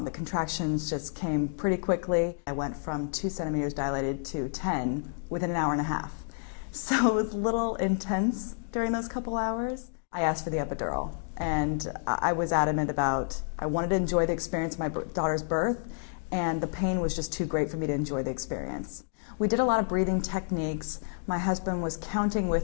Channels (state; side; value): silent; right; digital silence